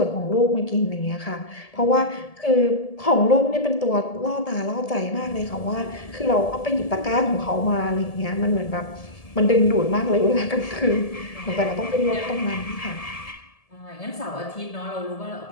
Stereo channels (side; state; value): right; late; 1.7 ms